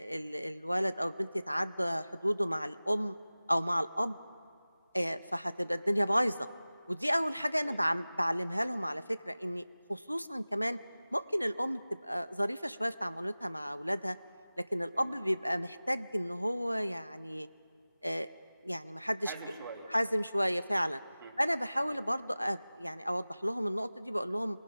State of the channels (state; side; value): inverted; both; correlation -0.98